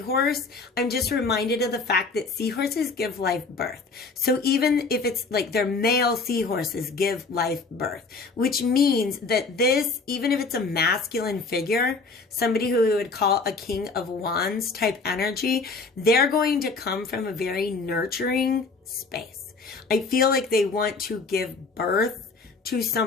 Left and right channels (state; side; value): quieter; right; 4.1 dB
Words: I'm just reminded of the fact that seahorses give life birth. So even if it's like their male seahorses give life birth, which means that this, even if it's a masculine figure, somebody who we would call a King of Wands type energy, they're going to come from a very nurturing space. I feel like they want to give birth to